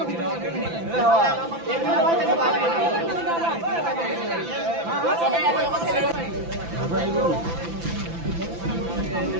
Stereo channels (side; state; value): left; late; 5.9 ms